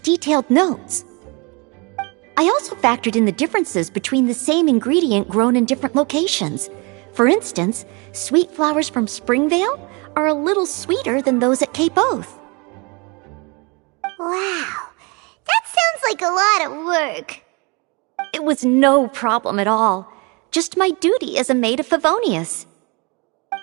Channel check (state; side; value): quieter; left; 29.6 dB